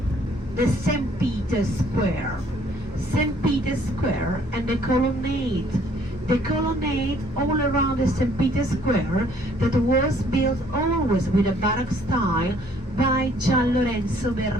The St. Peter's Square. St. Peter's Square and the colonnade. The colonnade all around the St. Peter's Square that was built always with a Baroque style by Gian Lorenzo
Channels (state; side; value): normal; both; correlation 0.61